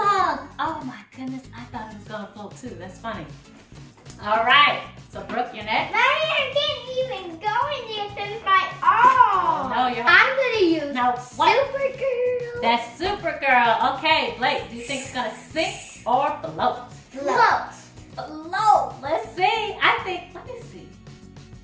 Oh my goodness, I thought it was gonna float too. That's funny. All right, so Brooke, you're next. I can't even go in there since my arm. No, you're. I'm gonna use Now what? Supergirl. That's Supergirl. Okay, Blake, do you think it's gonna sink or float? Float. Float. Let's see. Let me see.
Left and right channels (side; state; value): both; identical; correlation 1.00